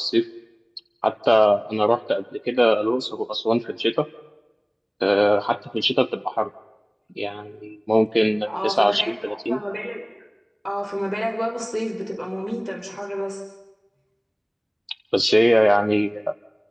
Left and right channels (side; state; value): both; identical; correlation 1.00